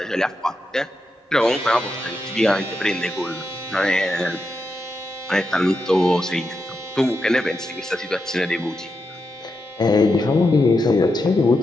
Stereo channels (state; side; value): normal; both; correlation 0.86